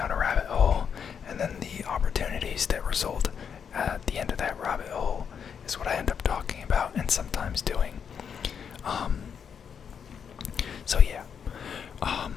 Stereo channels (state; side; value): quieter; right; 7.2 dB